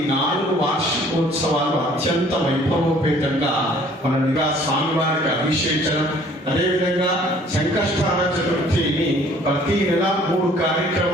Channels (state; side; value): normal; both; correlation 0.56